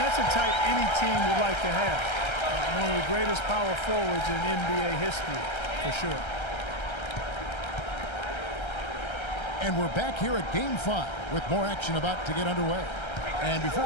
that's a type any team would like to have. One of the greatest power forwards in NBA history, for sure. And we're back here at Game 5 with more action about to get underway. And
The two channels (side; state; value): right; late; 1.3 ms